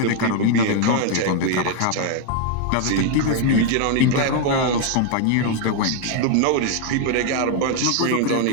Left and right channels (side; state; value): both; different; correlation 0.01